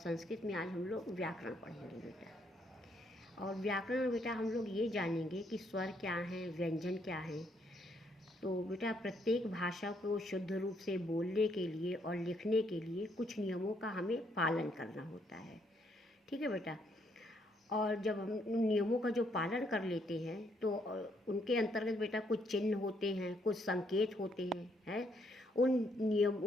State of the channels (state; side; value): normal; both; correlation 0.72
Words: में आज हम लोग व्याकरण पढ़ेंगे बेटा। और व्याकरण बेटा हम लोग ये जानेंगे कि स्वर क्या हैं, व्यंजन क्या हैं। तो बेटा प्रत्येक भाषा को शुद्ध रूप से बोलने के लिए और लिखने के लिए कुछ नियमों का हमें पालन करना होता है। ठीक है बेटा। और जब हम उन नियमों का जो पालन कर लेते हैं तो उनके अंतर्गत बेटा कुछ चिन्ह होते हैं, कुछ संकेत होते हैं।